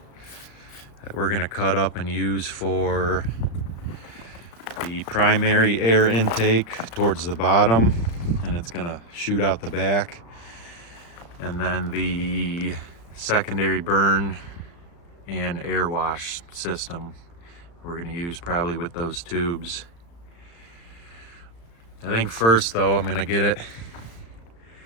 that we're gonna cut up and use for the primary air intake towards the bottom, and it's gonna shoot out the back. And then the secondary burn and air wash system we're gonna use probably with those tubes. I think first though, I'm gonna get it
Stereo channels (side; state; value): right; late; 35 ms